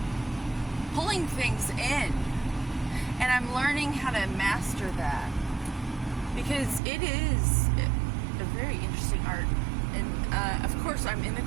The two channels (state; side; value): drops out; left; at 6.8 s